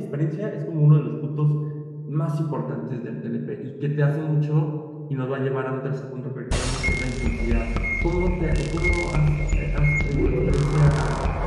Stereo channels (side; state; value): both; identical; correlation 1.00